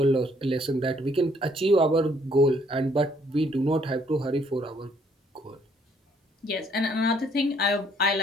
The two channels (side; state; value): both; normal; correlation 0.65